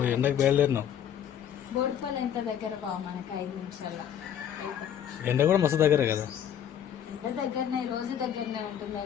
ఎండకు బయలుదేరినాం. బోడుపాలు ఎంత దగ్గర బావ మనకు 5 నిమిషాల్లో. ఎండ కూడా మస్తు దగ్గర కదా. ఎంత దగ్గరనే, రోజు దగ్గరనే ఉంటుంది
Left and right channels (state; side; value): quieter; right; 9.5 dB